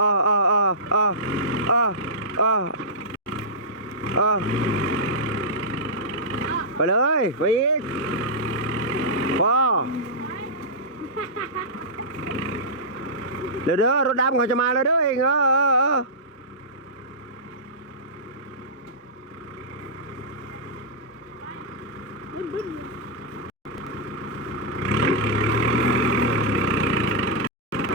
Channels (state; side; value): normal; both; correlation -0.15